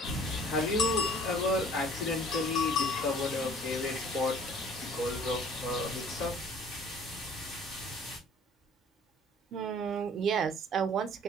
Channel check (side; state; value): both; normal; correlation 0.52